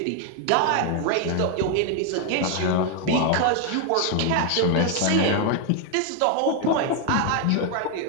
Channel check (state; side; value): different; both; correlation 0.01